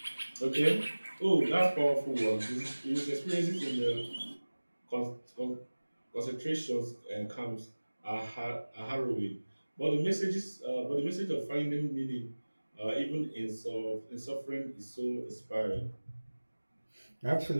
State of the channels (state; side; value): inverted; both; correlation -1.00